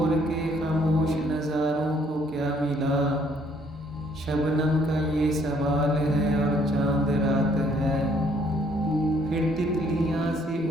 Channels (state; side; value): normal; both; correlation 0.65